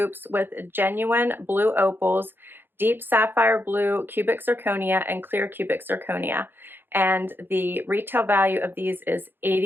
with genuine blue opals, deep sapphire blue cubic zirconia, and clear cubic zirconia. And the retail value of these is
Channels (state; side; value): late; left; 0.10 ms